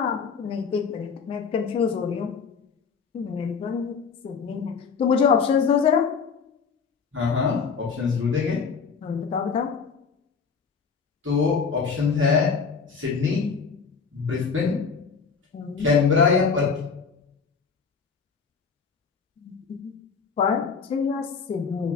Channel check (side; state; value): right; quieter; 5.6 dB